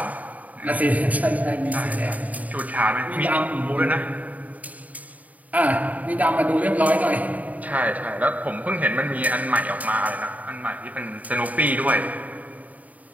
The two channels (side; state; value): left; late; 0.073 ms